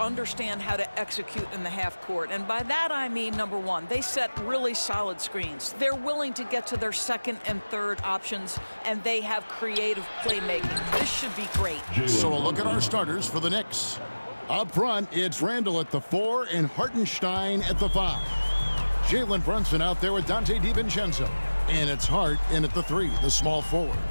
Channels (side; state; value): both; inverted; correlation -1.00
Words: how to execute in the half court. And by that, I mean, number one, they set really solid screens. They're willing to get to their second and third options, and they have creative playmaking. This should be great. So a look at our starters for the Knicks. Up front, it's Randall at the 4 and Hartenstein at the 5. Jalen Brunson out there with Dante DiVincenzo. And it's Hart in at the 3, the small forward.